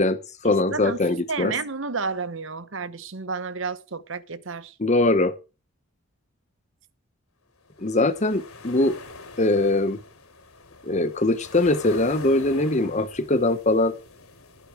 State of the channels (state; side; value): normal; both; correlation 0.29